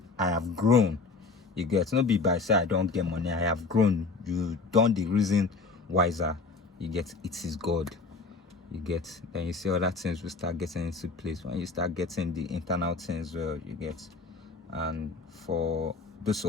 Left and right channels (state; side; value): quieter; right; 4.1 dB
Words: I have grown. You get, not be by say I don't get money. I have grown. You done the reason wiser. You get, it is God. You get, then you see other things will start getting into place when you start getting the internal things well. You get. And for those